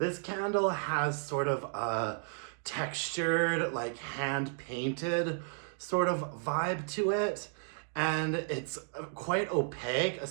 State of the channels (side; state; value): left; silent; 56 dB below the other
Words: candle has sort of a textured, like hand-painted sort of vibe to it. And it's quite opaque,